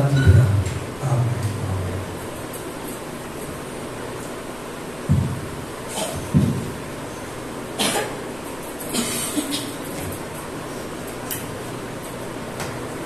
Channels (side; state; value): left; noise; hum, 19 dB below the sound